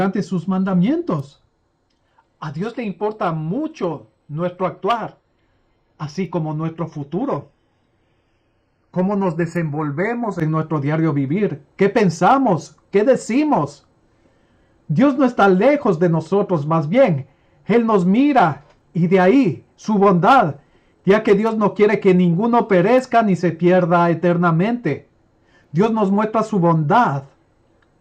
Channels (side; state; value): both; identical; correlation 1.00